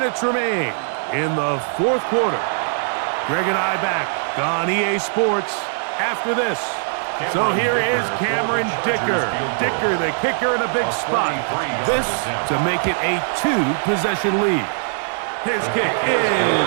remain in the 4th quarter. Greg and I back on EA Sports after this. So here is Cameron Dicker. Dicker, the kicker, in a big spot. This to make it a 2-possession lead. His kick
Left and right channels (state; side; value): silent; left; digital silence